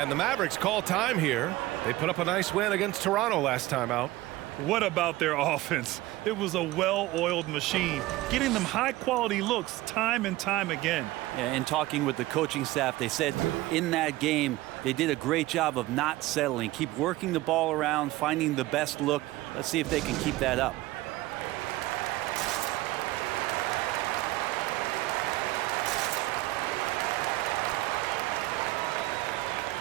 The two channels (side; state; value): left; quieter; 17.9 dB